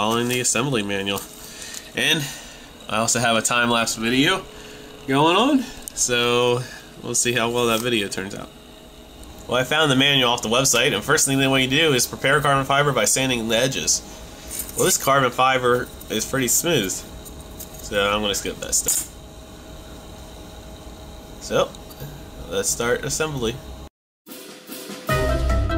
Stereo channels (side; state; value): both; identical; correlation 1.00